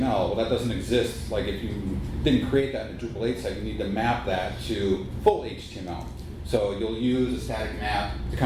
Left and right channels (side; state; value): both; identical; correlation 1.00